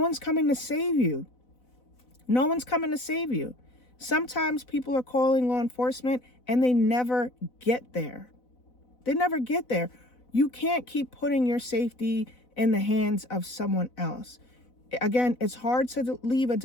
coming to save you. No one's coming to save you. Sometimes people are calling law enforcement and they never get there. They never get there. You can't keep putting your safety in the hands of someone else. Again, it's hard to leave a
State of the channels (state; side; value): late; right; 4.0 ms